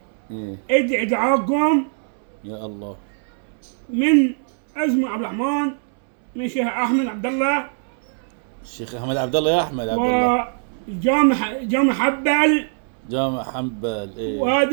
ايه ادعي دعاءكم يا الله. من اسمه عبد الرحمن، من الشيخ احمد عبد الله، الشيخ احمد عبد الله يا احمد عبد الله. وجامع حبل، جامع حنبل ايه.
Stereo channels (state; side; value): silent; left; 64 dB below the other